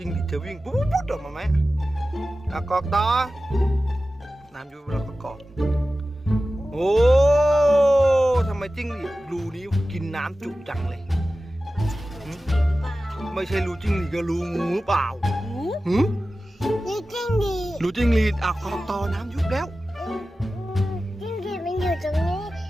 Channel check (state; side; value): normal; both; correlation 0.95